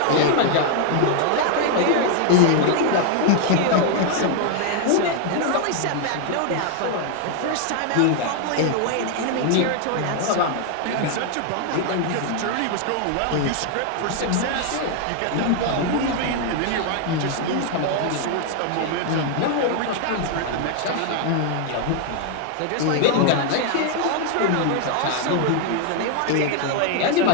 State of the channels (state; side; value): different; both; correlation 0.00